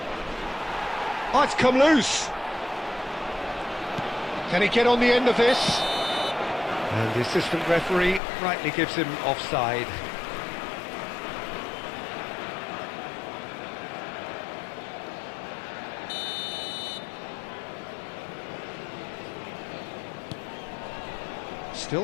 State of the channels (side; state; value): right; drops out; at 8.2 s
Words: Oh, it's come loose. Can he get on the end of this? And the assistant referee rightly gives him offside.